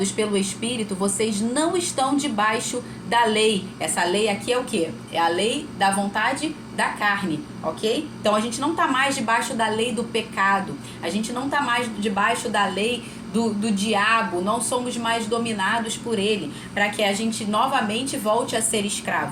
pelo Espírito, vocês não estão debaixo da lei. Essa lei aqui é o quê? É a lei da vontade da carne, ok? Então a gente não está mais debaixo da lei do pecado. A gente não está mais debaixo da lei do diabo, não somos mais dominados por ele, para que a gente novamente volte a ser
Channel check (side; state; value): both; identical; correlation 1.00